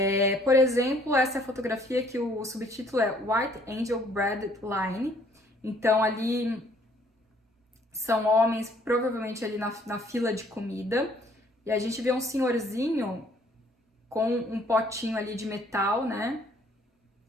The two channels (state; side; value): normal; both; correlation 0.61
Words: Por exemplo, essa é a fotografia que o subtítulo é White Angel Bread Line. Então ali são homens provavelmente ali na fila de comida. E a gente vê um senhorzinho com um potinho ali de metal, né?